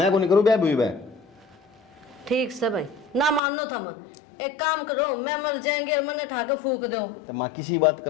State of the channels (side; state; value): right; drops out; at 3.4 s